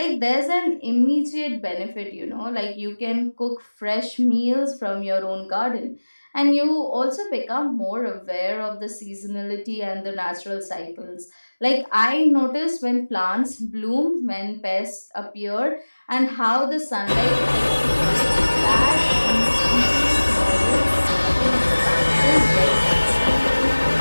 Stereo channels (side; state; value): both; inverted; correlation -1.00